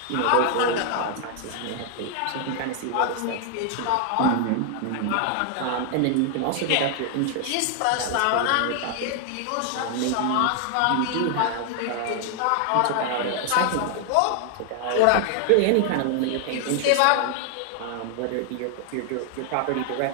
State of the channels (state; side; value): different; both; correlation 0.00